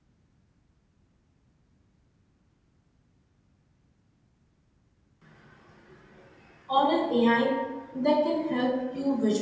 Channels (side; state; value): both; identical; correlation 1.00